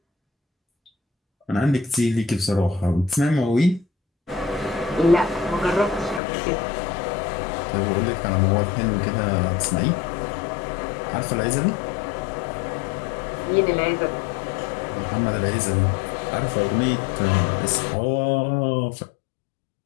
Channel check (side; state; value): right; drops out; at 6.2 s